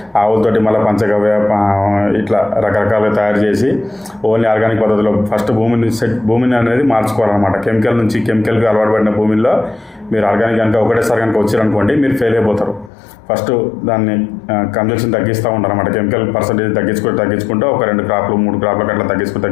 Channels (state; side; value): drops out; right; at 12.9 s